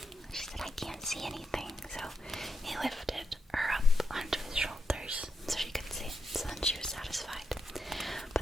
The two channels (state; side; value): normal; both; correlation 0.84